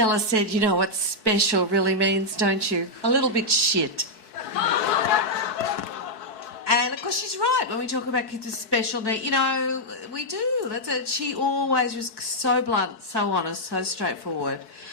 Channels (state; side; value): late; right; 4.6 ms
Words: said, "You know what special really means, don't you? A little bit shit." And of course she's right when we talk about kids with special needs. You know, we do. That's it. She always was so blunt, so honest, so straightforward.